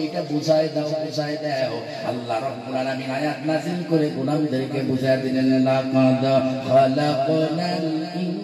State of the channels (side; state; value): both; identical; correlation 1.00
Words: এটা বুঝায় দাও, বুঝায় দাও। আল্লাহ রাব্বুল আলামিন আয়াত নাযিল করে গোলামদেরকে বুঝায় দিলেন লাকাদ খালাকনাল